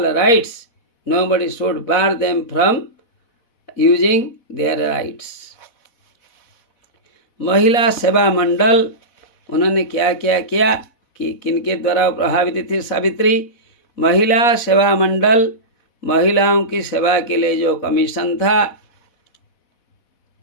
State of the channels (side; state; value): right; late; 4.1 ms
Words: rights, nobody should bar them from using their rights. महिला सेवा मंडल, उन्होंने क्या क्या किया कि किनके द्वारा प्रभावित थी सावित्री। महिला सेवा मंडल महिलाओं की सेवा के लिए जो कमीशन था